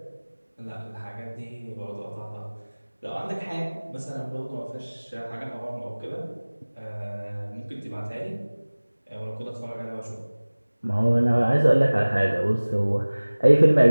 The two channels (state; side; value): inverted; both; correlation -1.00